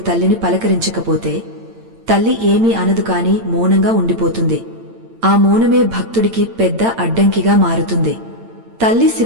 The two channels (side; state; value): left; late; 8.9 ms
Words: పలకరించకపోతే తల్లి ఏమీ అనదు కాని మౌనంగా ఉండిపోతుంది. ఆ మౌనమే భక్తుడికి పెద్ద అడ్డంకిగా మారుతుంది. తల్లి